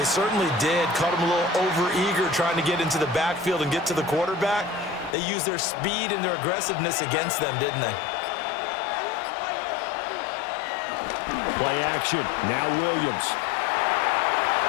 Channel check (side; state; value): right; drops out; at 5.2 s